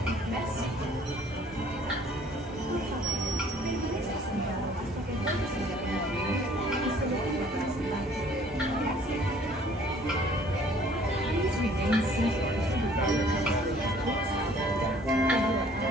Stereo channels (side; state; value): both; normal; correlation 0.56